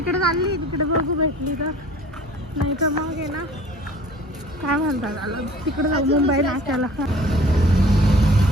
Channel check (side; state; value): both; normal; correlation 0.48